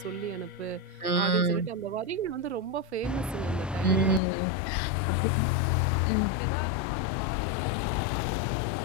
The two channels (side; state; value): right; drops out; at 4.2 s